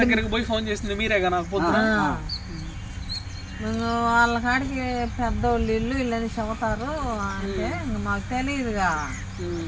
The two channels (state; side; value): identical; both; correlation 1.00